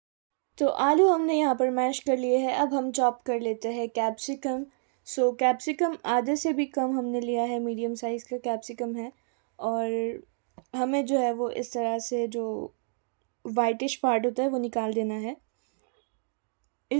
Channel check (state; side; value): silent; left; 59 dB below the other